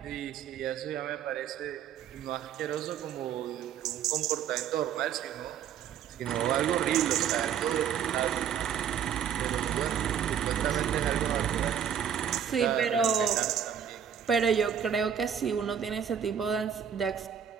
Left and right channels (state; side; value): quieter; left; 8.5 dB